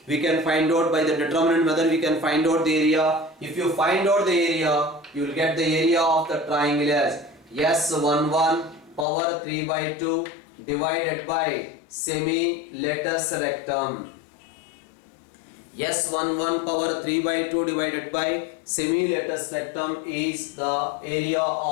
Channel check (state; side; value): drops out; right; at 9.1 s